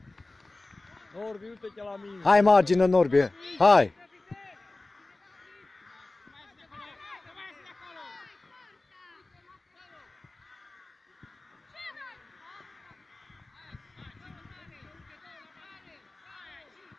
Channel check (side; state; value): right; quieter; 3.0 dB